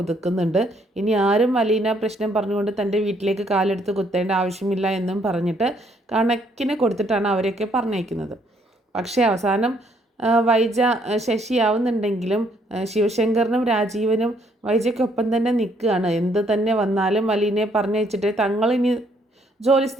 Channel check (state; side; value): normal; both; correlation 0.68